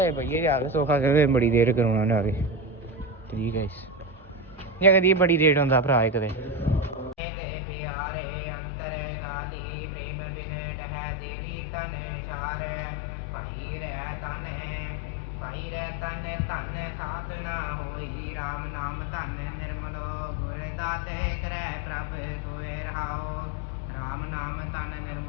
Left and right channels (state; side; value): drops out; right; at 7.2 s